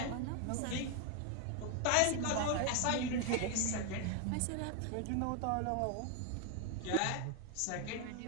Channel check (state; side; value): different; both; correlation 0.01